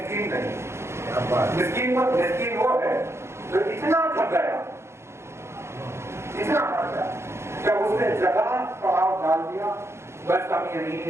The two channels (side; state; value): left; late; 0.13 ms